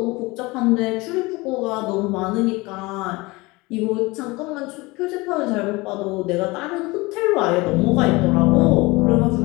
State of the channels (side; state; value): right; quieter; 23.3 dB